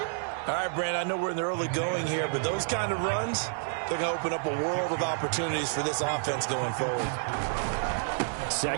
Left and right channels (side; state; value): left; silent; digital silence